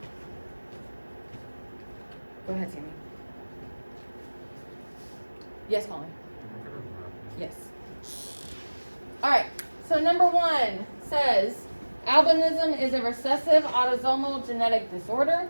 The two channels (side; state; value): both; inverted; correlation -1.00